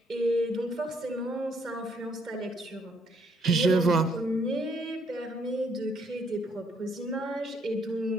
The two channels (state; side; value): normal; both; correlation 0.69